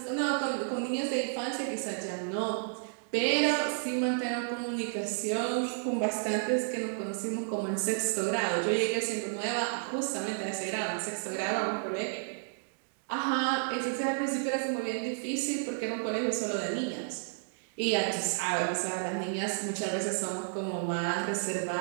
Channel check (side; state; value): left; silent; digital silence